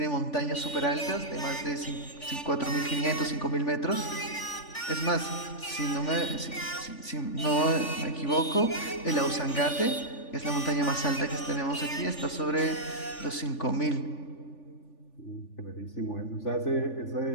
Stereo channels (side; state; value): right; late; 3.4 ms